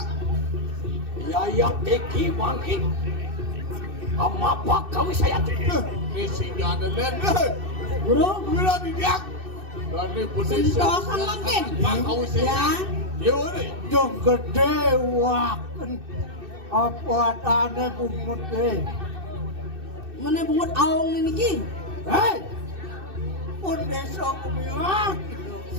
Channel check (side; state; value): left; late; 2.6 ms